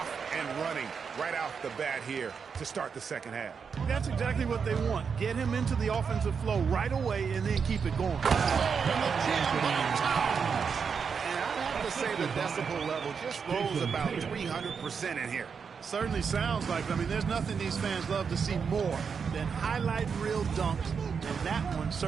and running right off the bat here to start the second half. That's exactly what they want. Get him into the offensive flow right away and then keep it going. And the jam by Towns. And I'd have to say the decibel level just rose about 300% in here. Certainly sounds like it. I mean, there's nothing these fans love to see more than highlight reel dunks, and that one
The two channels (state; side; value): quieter; left; 6.1 dB